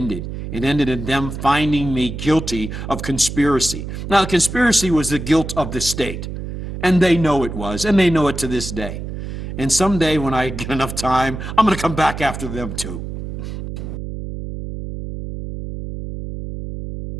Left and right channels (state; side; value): noise; right; hum, 7 dB below the sound